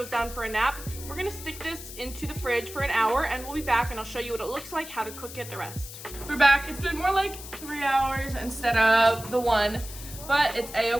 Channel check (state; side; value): noise; left; hiss, 13 dB below the sound